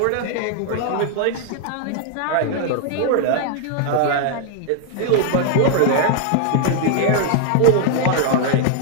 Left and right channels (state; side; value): different; both; correlation 0.00